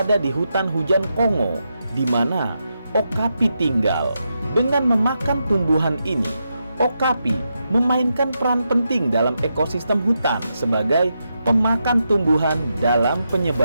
di hutan hujan Kongo, di mana okapi tinggal. Dengan memakan tumbuhan ini, okapi memainkan peran penting dalam ekosistem hutan sebagai pemakan tumbuhan dalam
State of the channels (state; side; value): inverted; both; correlation -0.85